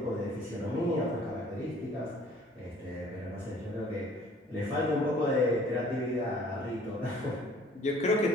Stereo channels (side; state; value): both; normal; correlation 0.55